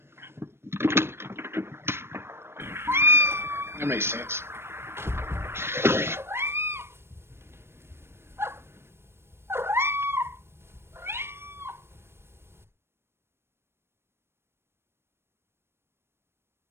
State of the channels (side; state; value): left; late; 0.12 ms